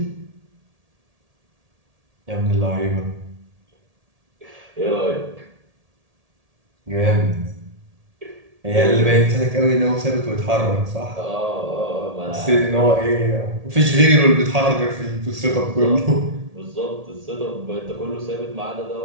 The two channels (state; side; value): late; left; 1.8 ms